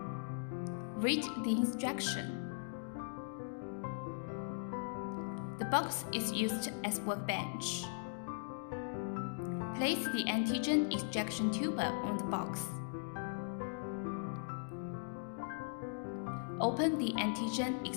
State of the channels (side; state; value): right; silent; digital silence